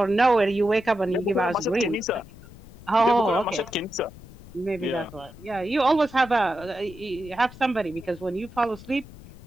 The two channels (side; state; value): left; noise; rumble, 19 dB below the sound